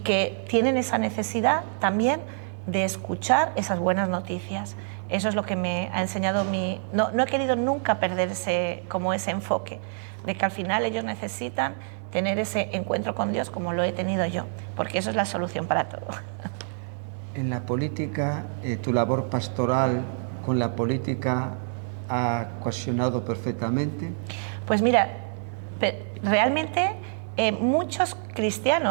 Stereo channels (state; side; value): silent; left; digital silence